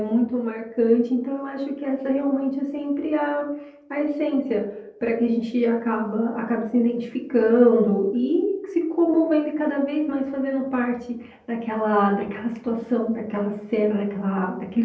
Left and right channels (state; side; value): identical; both; correlation 1.00